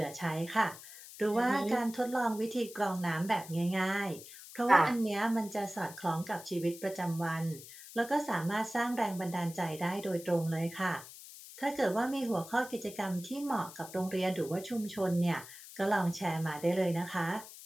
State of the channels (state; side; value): noise; left; hiss, 15 dB below the sound